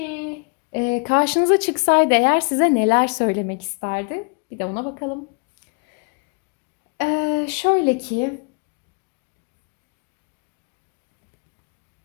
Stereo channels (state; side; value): quieter; right; 35.9 dB